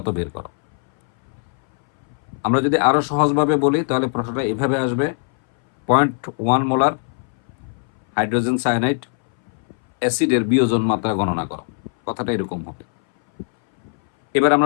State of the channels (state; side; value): silent; right; 62 dB below the other